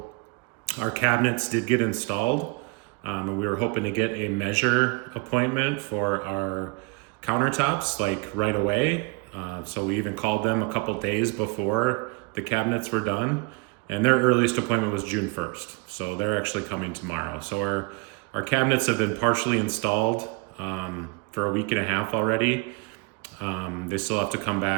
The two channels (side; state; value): left; quieter; 27.0 dB